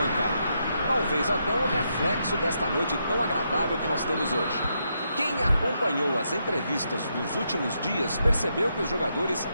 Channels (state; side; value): inverted; both; correlation -0.80